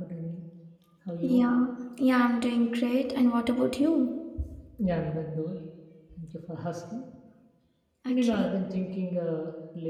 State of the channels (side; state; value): both; identical; correlation 1.00